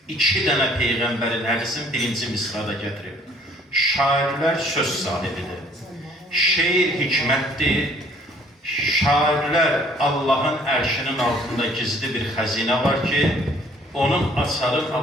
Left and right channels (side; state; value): both; normal; correlation 0.58